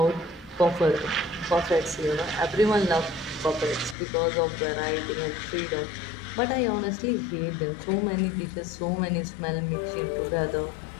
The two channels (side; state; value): right; drops out; at 4.0 s